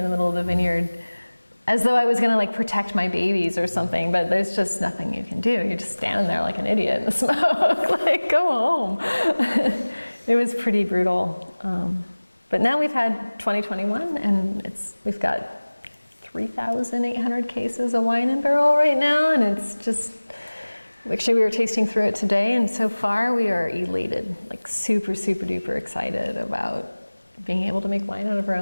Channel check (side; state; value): both; inverted; correlation -1.00